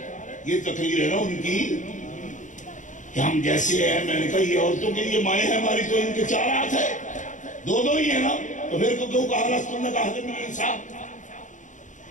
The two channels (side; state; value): right; late; 0.36 ms